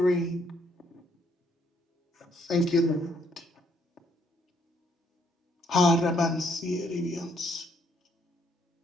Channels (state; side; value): normal; both; correlation 0.69